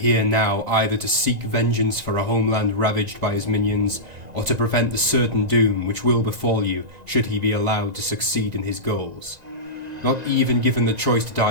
now either to seek vengeance for a homeland ravaged by his minions, or to prevent the certain doom which will befall you should he be allowed to succeed in his goals. Not even given the choice to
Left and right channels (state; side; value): late; left; 2.0 ms